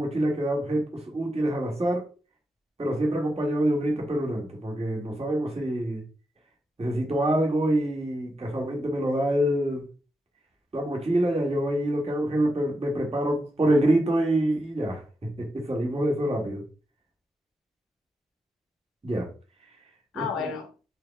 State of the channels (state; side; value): normal; both; correlation 0.86